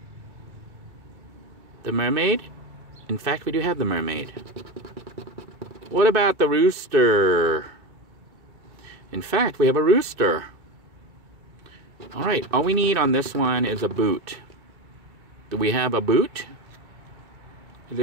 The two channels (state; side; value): late; left; 2.3 ms